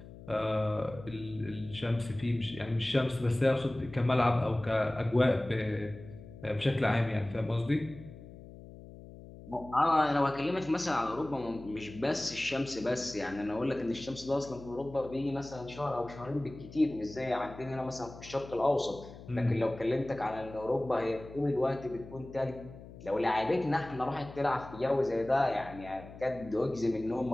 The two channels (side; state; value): left; noise; hum, 16 dB below the sound